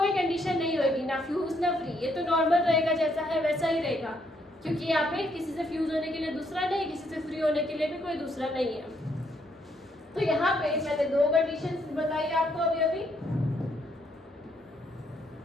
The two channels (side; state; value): both; normal; correlation 0.72